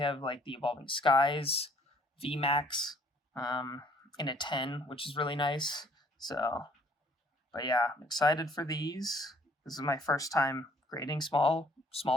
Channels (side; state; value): both; normal; correlation 0.60